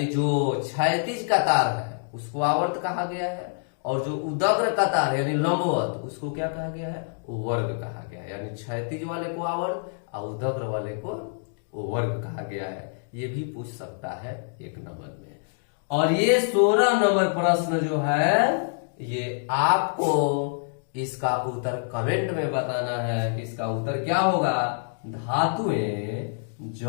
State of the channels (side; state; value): right; silent; digital silence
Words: जो क्षैतिज कतार है उसको आवर्त कहा गया है, और जो उदग्र कतार यानी लंबवत उसको क्या कहा गया है? वर्ग कहा गया है। यानी क्षैतिज वाले को आवर्त और उदग्र वाले को वर्ग कहा गया है। ये भी पूछ सकता है 1 नंबर में। और ये 16 नंबर प्रश्न जो है ये आपको इसका उत्तर कमेंट में बताना है कि इसका उत्तर क्या होगा। धातुएं